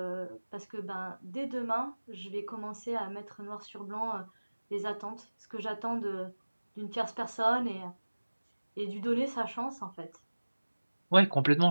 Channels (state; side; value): inverted; both; correlation -1.00